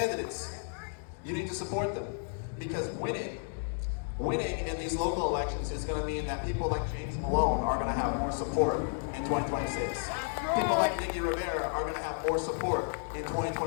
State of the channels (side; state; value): right; silent; 56 dB below the other